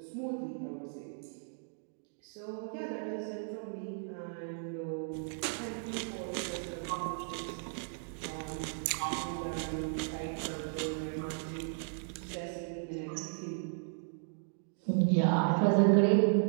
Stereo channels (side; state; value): left; silent; digital silence